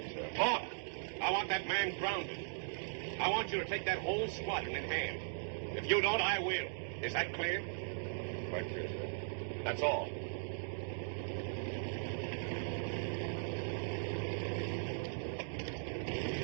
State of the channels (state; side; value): silent; left; digital silence